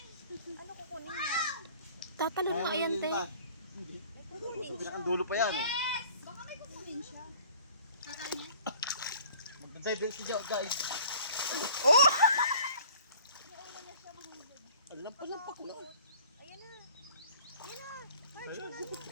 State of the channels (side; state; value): both; inverted; correlation -0.50